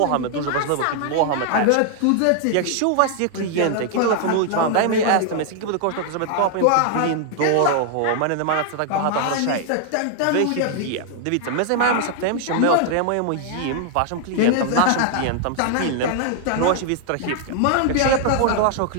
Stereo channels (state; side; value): different; both; correlation 0.00